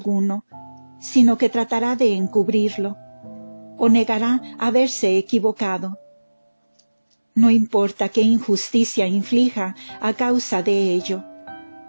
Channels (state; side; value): inverted; both; correlation -1.00